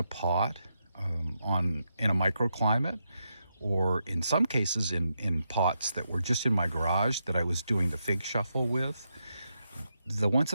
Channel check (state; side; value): inverted; both; correlation -0.84